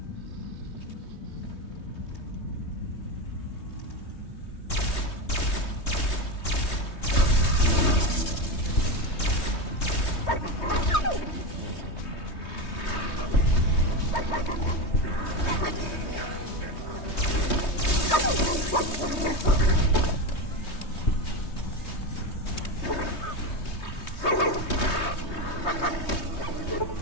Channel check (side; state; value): right; late; 3.2 ms